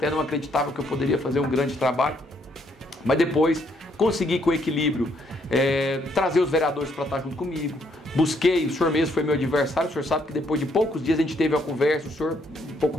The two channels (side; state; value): both; normal; correlation 0.71